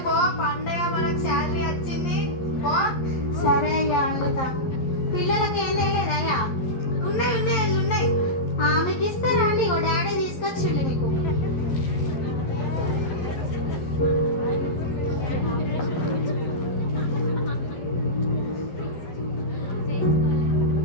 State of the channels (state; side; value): late; right; 12 ms